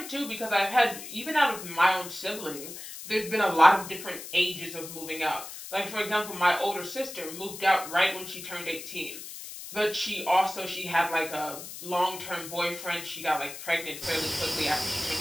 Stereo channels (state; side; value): noise; left; hiss, 11 dB below the sound